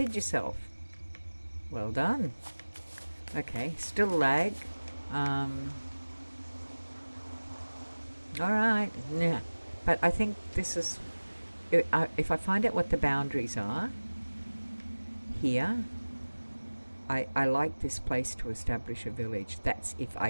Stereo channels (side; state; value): both; inverted; correlation -1.00